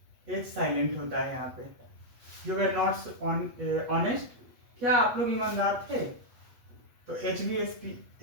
H silent होता है यहाँ पे, यू वेयर नॉट ऑनेस्ट। क्या आप लोग ईमानदार थे? तो एच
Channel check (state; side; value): late; left; 8.2 ms